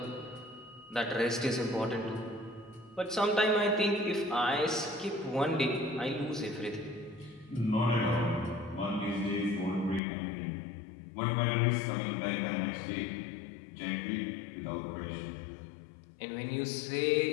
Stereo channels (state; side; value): drops out; right; at 10.0 s